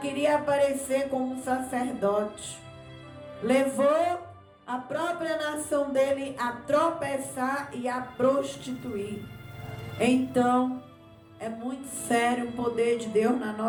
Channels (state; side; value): identical; both; correlation 1.00